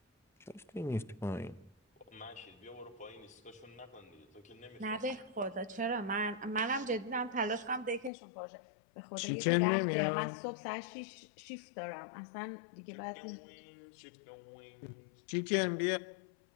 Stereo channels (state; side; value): drops out; right; at 8.1 s